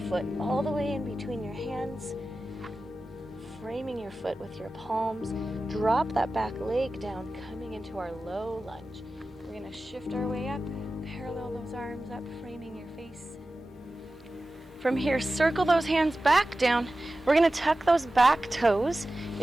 all the way in between your hands. Framing your foot with your palms. Drop that back leg down, coming into our low lunge. We're going to shift our way up. Parallel those arms up, framing your face. From here, circle those hands back down. We're going to tuck those back toes.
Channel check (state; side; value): normal; both; correlation 0.95